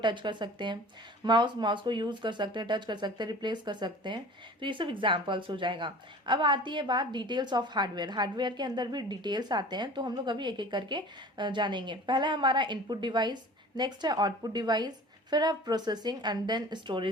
कर सकते हैं. माउस को यूज कर सकते हैं, टच कर सकते हैं, रिप्लेस कर सकते हैं. तो ये सब एग्जाम्पल्स हो जाएगा. अब आती है बात डिटेल्स ऑफ हार्डवेयर. हार्डवेयर के अंदर भी डिटेल्स आते हैं तो हम लोग अभी एक एक करके जानेंगे. पहला हमारा इनपुट डिवाइस, नेक्स्ट है आउटपुट डिवाइस, फिर अब processing and then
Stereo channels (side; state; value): both; normal; correlation 0.42